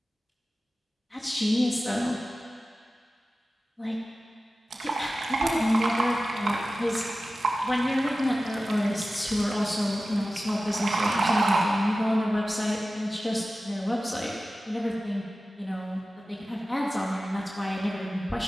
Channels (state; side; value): normal; both; correlation 0.95